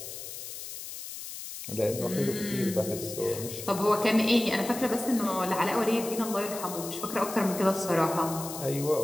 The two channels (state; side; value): noise; left; hiss, 9 dB below the sound